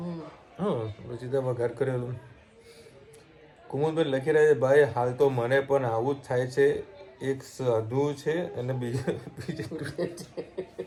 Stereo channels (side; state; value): both; identical; correlation 1.00